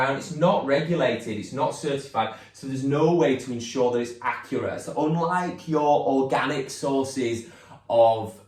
it's not regulated, it's not certified, so there's no way to ensure that it's accurate. So unlike your organic sources of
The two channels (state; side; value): identical; both; correlation 1.00